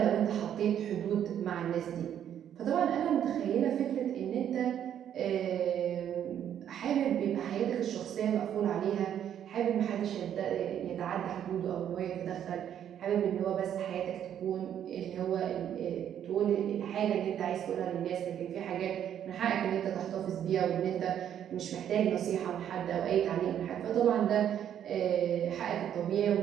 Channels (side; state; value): left; quieter; 9.8 dB